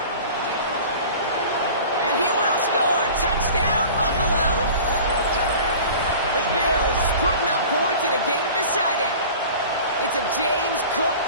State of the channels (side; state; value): both; inverted; correlation -0.41